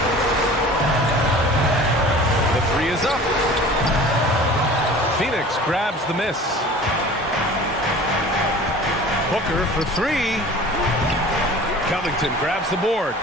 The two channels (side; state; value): both; normal; correlation 0.43